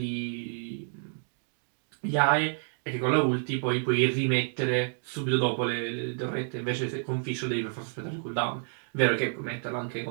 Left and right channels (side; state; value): left; silent; 58 dB below the other